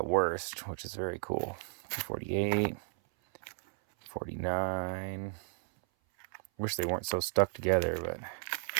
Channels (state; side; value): silent; left; 55 dB below the other